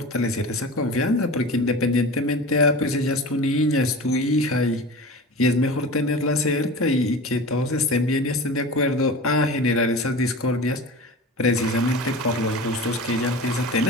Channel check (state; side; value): normal; both; correlation 0.33